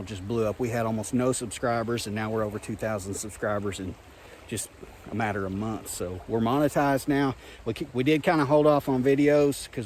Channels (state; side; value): identical; both; correlation 1.00